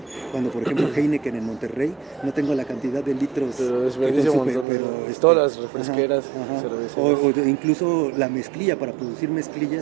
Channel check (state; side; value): drops out; left; at 4.7 s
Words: cuando por ejemplo Heineken en Monterrey, no tengo la cantidad de litros, pero desperdicia un montón, pero todas las refresqueras, cervezas. O incluso la mezclilla, para producir mezclilla